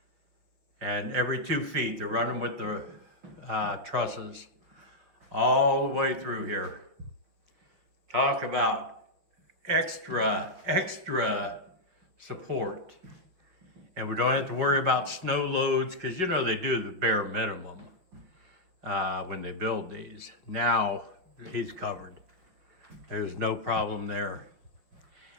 And every 2 feet, they're running with the trusses all the way through here. Talk about extra support. And we don't have to worry about snow loads, because you know they do the bare minimum when they build these. Now he's covered. There's no problem there.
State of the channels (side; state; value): left; late; 6.1 ms